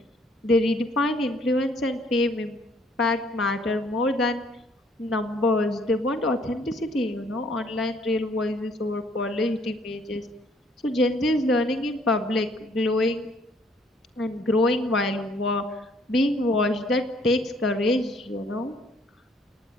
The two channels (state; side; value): normal; both; correlation 0.63